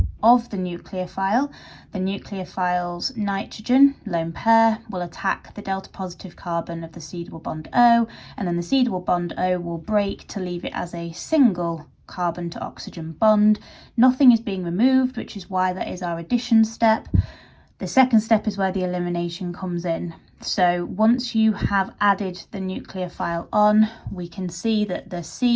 of the nucleophile. The nucleophile's nitrogen lone pair will attack the delta positive carbon of the C double bond O, and then the C double bond O will break to leave it as a single carbon to oxygen bond. Nothing is being removed, which is why that is our addition step. The second step is where the elimination comes in. So once you have added the nucleophile on, we can see that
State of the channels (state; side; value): identical; both; correlation 1.00